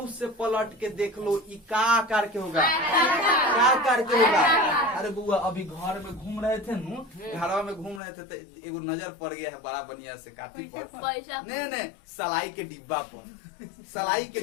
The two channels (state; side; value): drops out; right; at 8.0 s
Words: से पलट के देख लो ई का आकार के होगा? क्या आकार के होगा? अरे बुआ अभी घर में घूम रहे थे नु, घरवा में घूम रहे थे तो एगो नजर पड़ गया है बड़ा बढ़िया से काटी पर नहीं सलाई के डिब्बा पर। सलाई के